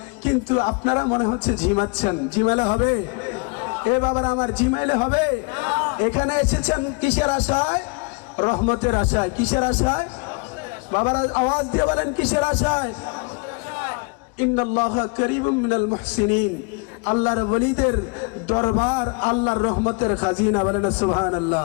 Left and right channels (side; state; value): right; quieter; 32.3 dB